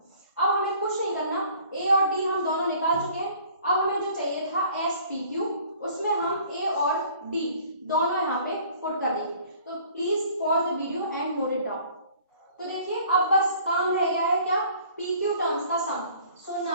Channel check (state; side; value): inverted; both; correlation -0.53